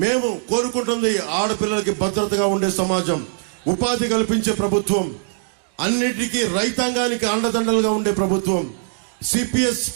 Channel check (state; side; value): silent; left; digital silence